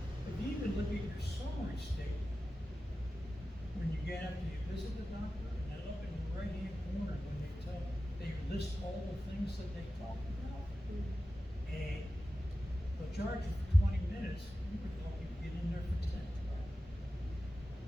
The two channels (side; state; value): both; normal; correlation 0.94